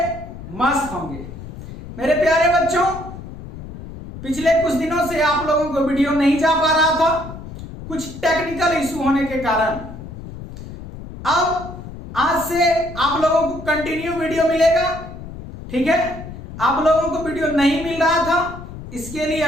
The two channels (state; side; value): noise; left; rumble, 12 dB below the sound